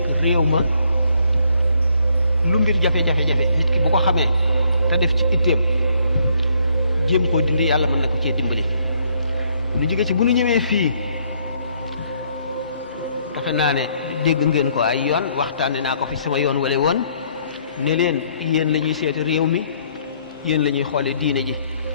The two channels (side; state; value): both; inverted; correlation -0.68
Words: réew ma lu mbir jafe-jafe nit ki bu ko xamee te def ci itteem jéem koo dindi yàlla mën na ko cee dimbali ñu jóge ci bu ñu ñëwee fii defe naa ne dégg ngeen ko ay yoon waxtaane naa ko fi sama yoon wala woon ne leen yéen la ñuy seeti réew mi yéen la ñuy xoole diine ji